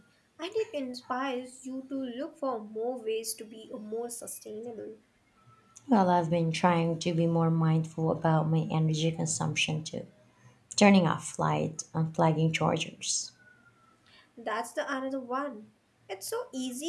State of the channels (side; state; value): both; identical; correlation 1.00